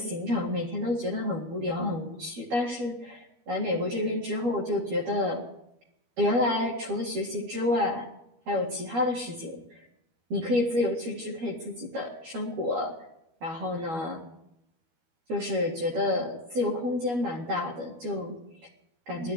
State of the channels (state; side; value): late; left; 12 ms